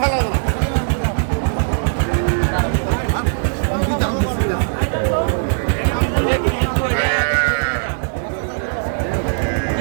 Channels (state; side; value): silent; left; digital silence